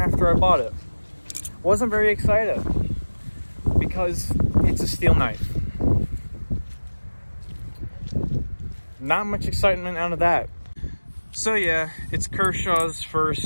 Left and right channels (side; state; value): both; inverted; correlation -1.00